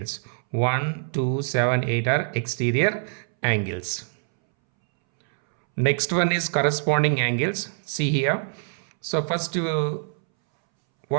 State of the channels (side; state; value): left; silent; 62 dB below the other